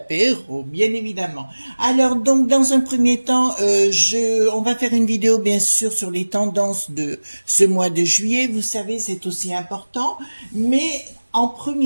bien évidemment. Alors donc dans un premier temps, on va faire une vidéo bien sûr sur les tendances de ce mois de juillet. Vous savez, c'est aussi important, mais en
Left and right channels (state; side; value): inverted; both; correlation -1.00